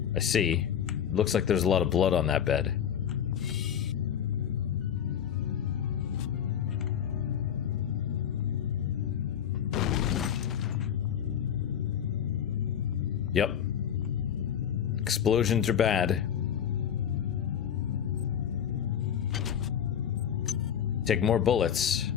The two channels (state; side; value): quieter; right; 8.9 dB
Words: I see. Looks like there's a lot of blood on that bed. Explosions are bad. Take more bullets,